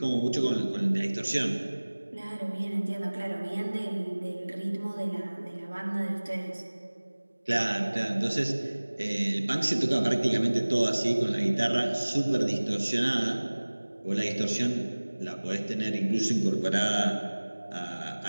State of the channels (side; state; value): both; inverted; correlation -1.00